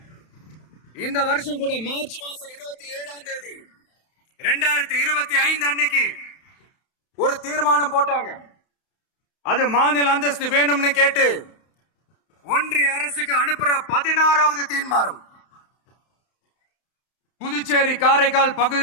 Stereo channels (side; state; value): right; late; 31 ms